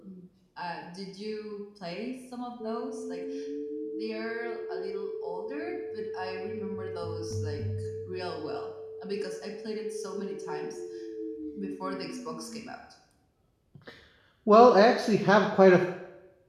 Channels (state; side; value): identical; both; correlation 1.00